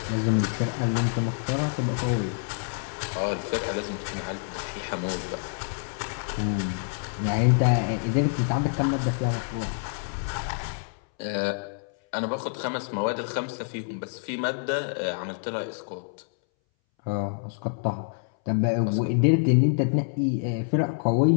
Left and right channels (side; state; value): right; silent; 60 dB below the other